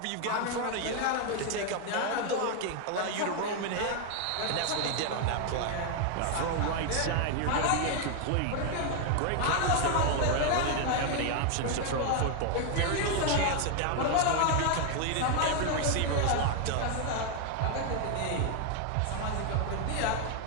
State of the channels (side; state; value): both; different; correlation 0.00